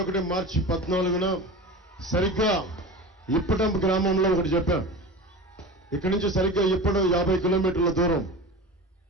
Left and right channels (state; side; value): normal; both; correlation 0.31